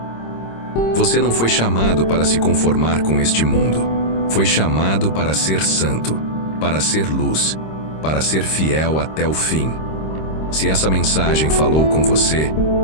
Você não foi chamado para se conformar com este mundo. Foi chamado para ser santo, para ser luz, para ser fiel até o fim. Se essa mensagem falou com você,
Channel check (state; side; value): late; right; 26 ms